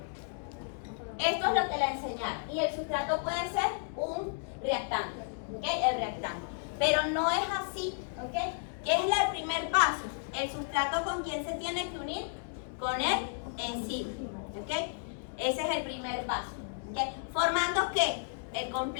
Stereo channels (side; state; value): right; silent; digital silence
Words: Esto es lo que le enseñaron. Y el sustrato puede ser un reactante. ¿Ok? El reactante. Pero no es así. ¿Ok? ¿Qué es el primer paso? El sustrato con quién se tiene que unir? Con el enzima. ¿Ok? Ese es el primer paso. ¿Ok? Formando ¿qué? El